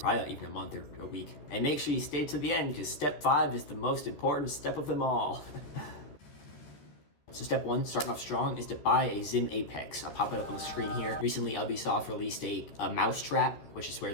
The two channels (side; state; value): right; late; 13 ms